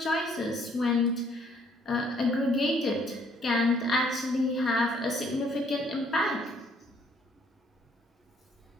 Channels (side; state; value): both; normal; correlation 0.64